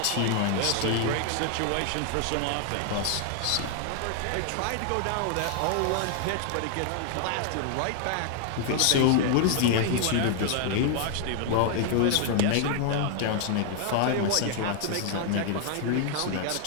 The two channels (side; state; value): both; different; correlation 0.00